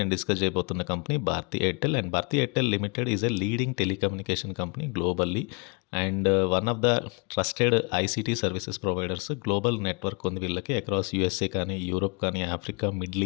డిస్కస్ చేయబోతున్న company Bharti Airtel. And Bharti Airtel limited is a leading telecommunication company globally. And one of the trusted ICT services providers. Global network ఉంది వీళ్ళకి అక్రాస్ యూఎస్ఏ కానీ, యూరోప్ కానీ, Africa, middle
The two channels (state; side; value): quieter; right; 32.8 dB